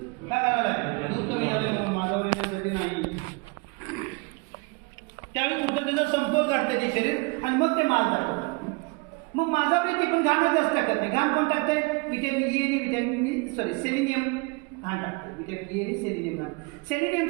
का घालायला? दूध कमी झालं म्हणून, माझ्यावर येण्यासाठी नाही. त्यावेळी कुठं त्याचा समतोल काढतं ते शरीर आणि मग ते माल दाखवतं. मग माझावर ती पण घाण जास्त टाकत नाही. घाण कोण टाकतंय? व्हिटॅमिन ई आणि सेलिनियम घाण टाकते. व्हिटॅमिन ई आणि सेलिनियम घाण.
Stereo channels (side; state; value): left; quieter; 29.1 dB